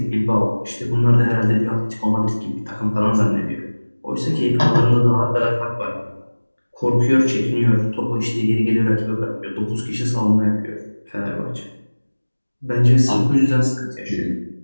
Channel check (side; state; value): both; inverted; correlation -1.00